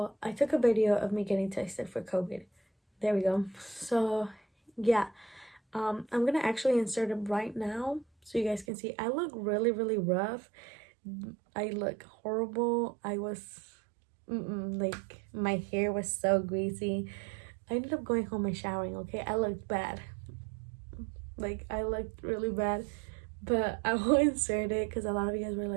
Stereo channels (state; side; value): drops out; left; at 8.7 s